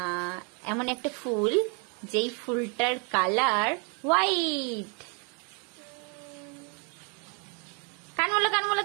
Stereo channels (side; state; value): left; quieter; 35.7 dB